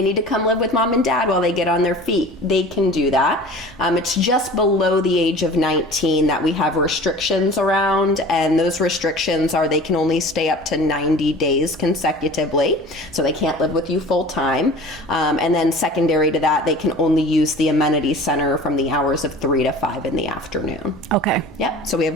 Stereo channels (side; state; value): both; normal; correlation 0.41